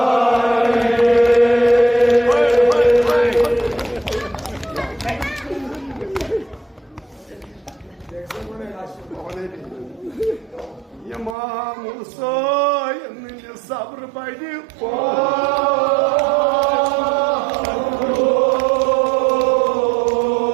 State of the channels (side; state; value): left; drops out; at 11.4 s